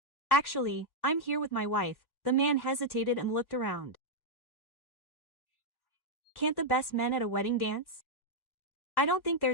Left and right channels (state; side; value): late; right; 1.1 ms